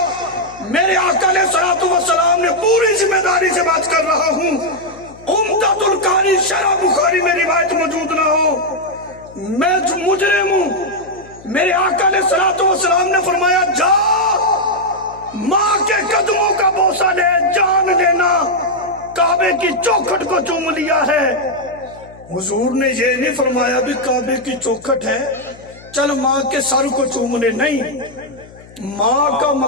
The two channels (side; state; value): left; noise; hum, 21 dB below the sound